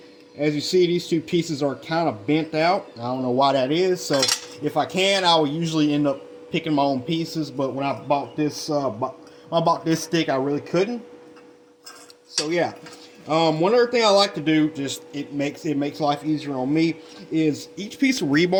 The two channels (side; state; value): both; identical; correlation 1.00